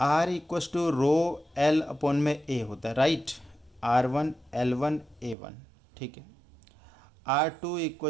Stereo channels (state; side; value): drops out; left; at 5.4 s